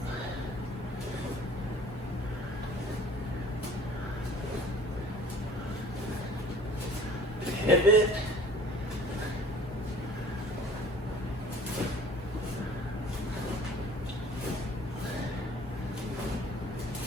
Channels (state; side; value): normal; both; correlation 0.49